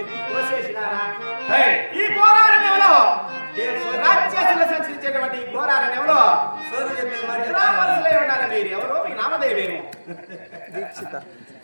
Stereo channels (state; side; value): inverted; both; correlation -1.00